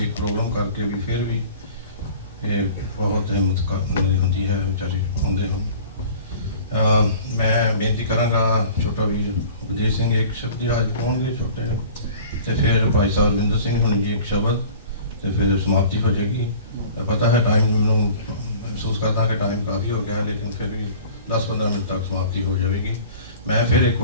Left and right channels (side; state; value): both; inverted; correlation -0.45